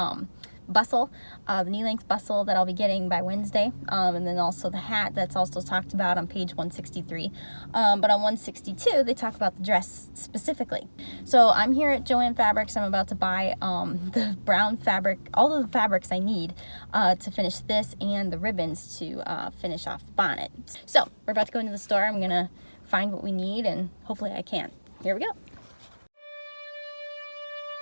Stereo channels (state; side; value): inverted; both; correlation -1.00